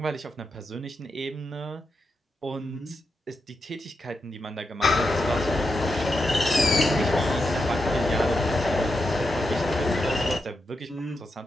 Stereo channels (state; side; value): normal; both; correlation 0.86